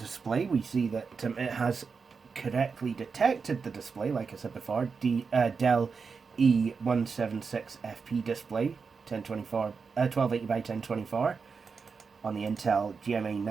we see that it has correctly detected the display, like I said before, Dell E176FP display, 1280 by 1024 on the Intel GMA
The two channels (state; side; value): quieter; left; 5.2 dB